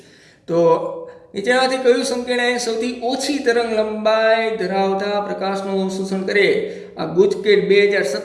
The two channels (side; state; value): both; identical; correlation 1.00